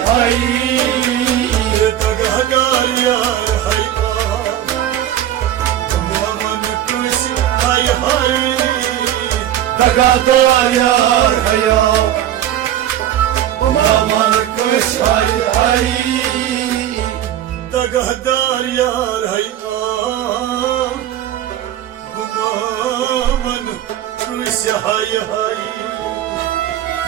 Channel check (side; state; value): left; quieter; 11.7 dB